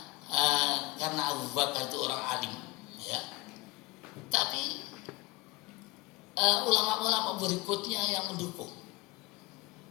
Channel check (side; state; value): right; quieter; 22.3 dB